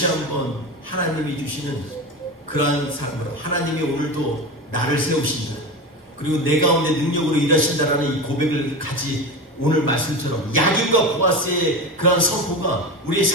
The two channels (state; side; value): normal; both; correlation 0.24